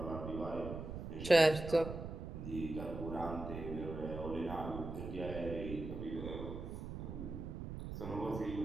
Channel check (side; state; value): right; noise; rumble, 7 dB below the sound